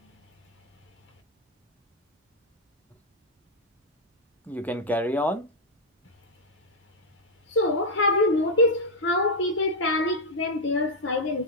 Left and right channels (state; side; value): normal; both; correlation -0.01